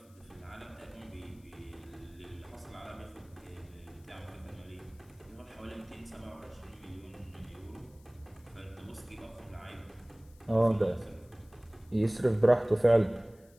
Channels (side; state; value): left; noise; hiss, 29 dB below the sound